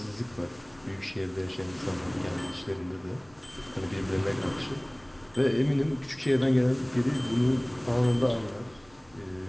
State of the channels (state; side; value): noise; left; rumble, 29 dB below the sound